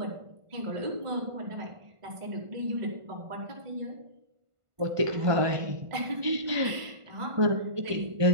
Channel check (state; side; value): late; left; 1.5 ms